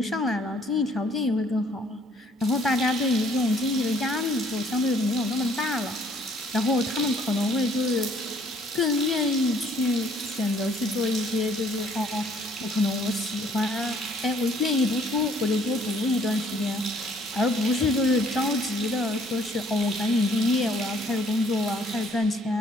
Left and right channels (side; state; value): both; normal; correlation 0.62